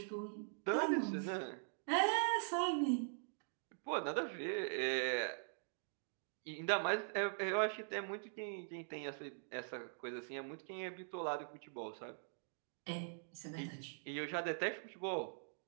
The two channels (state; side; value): silent; left; digital silence